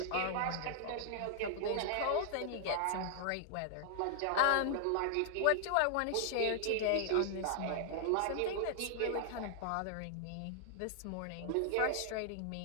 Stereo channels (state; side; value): different; both; correlation 0.00